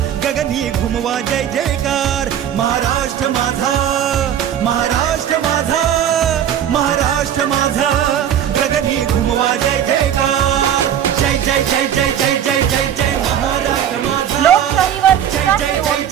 गगनी घुमवा जय जयकार महाराष्ट्र माझा महाराष्ट्र माझा महाराष्ट्र माझा गगनी घुमवा जय जयकार जय जय जय जय जय जय जय जय महाराष्ट्र माझा लोकशाहीवर जय जय जय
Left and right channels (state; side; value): quieter; left; 9.8 dB